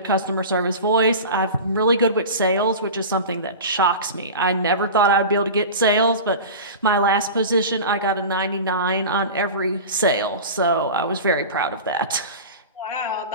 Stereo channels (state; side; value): inverted; both; correlation -0.31